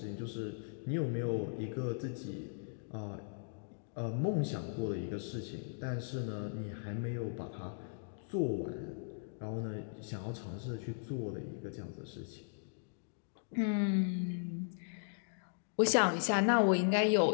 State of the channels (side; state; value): right; silent; digital silence